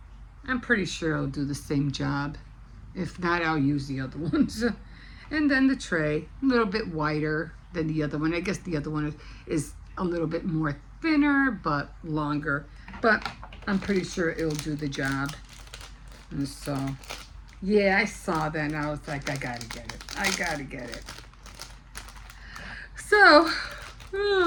pretty sure it'll do the same job. If not, I'll use the other ones. And then the tray, a little bit wider than the other one. I guess the other one is a little bit more thinner, but longer. But I'm pretty sure it'll do the job. And so, yeah, I saw that and I was like, I gotta get it. I gotta get it. So,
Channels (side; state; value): both; identical; correlation 1.00